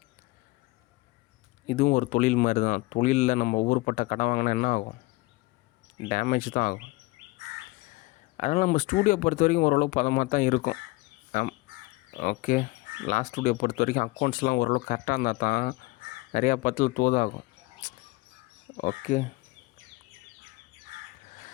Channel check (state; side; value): quieter; right; 22.7 dB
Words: இதுவும் ஒரு தொழில் மாதிரி தான். தொழிலில் நம்ம ஊருப்பட்ட கடன் வாங்கினா என்ன ஆகும்? டேமேஜ் தான் ஆகும். அதனால் நம்ம ஸ்டூடியோ பொறுத்த வரைக்கும் ஓரளவு பதமாக தான் இருக்கும். ஓகே, லாஸ்ட் ஸ்டூடியோ பொறுத்த வரைக்கும் அக்கௌண்ட்ஸ்லாம் ஓரளவு கரெக்டாக இருந்தால் தான் நிறையா பத்தில் தோதாகும். ஓகே,